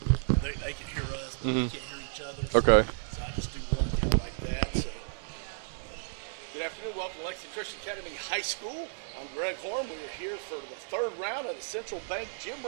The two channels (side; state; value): left; silent; 56 dB below the other